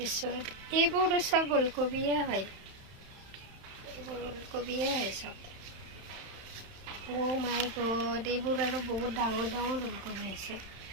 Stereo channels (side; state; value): left; late; 31 ms